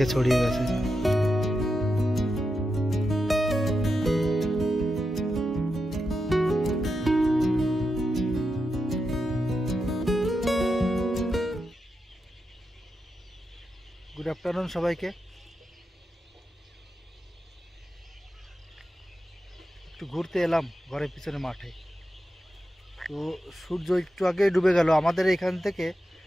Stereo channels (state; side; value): normal; both; correlation 0.88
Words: ছড়িয়ে গেছে। গুড আফটারনুন সবাইকে। একটু ঘুরতে এলাম ঘরের পিছনে মাঠে। তো সূর্য একটু আগে ডুবে গেল। আমাদের এখান থেকে